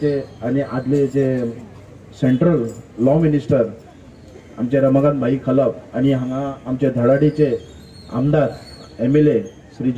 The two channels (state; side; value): identical; both; correlation 1.00